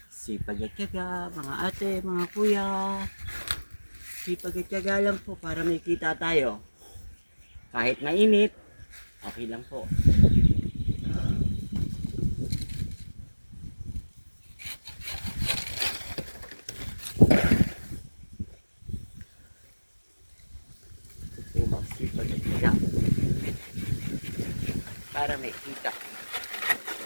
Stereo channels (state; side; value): inverted; both; correlation -1.00